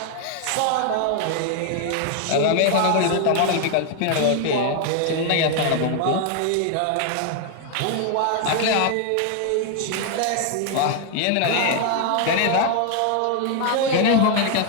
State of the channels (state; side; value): different; both; correlation 0.00